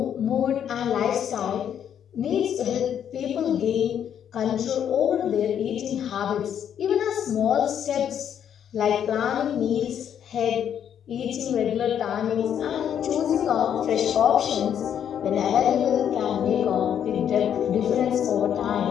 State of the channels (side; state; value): right; quieter; 9.1 dB